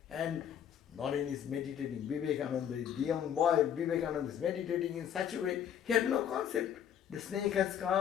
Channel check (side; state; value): right; quieter; 9.2 dB